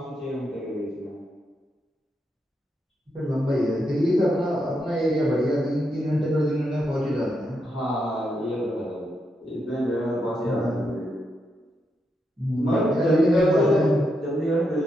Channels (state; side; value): normal; both; correlation 0.82